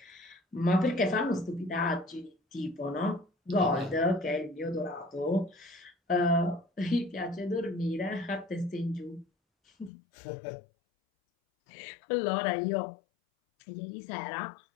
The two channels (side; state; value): right; drops out; at 9.9 s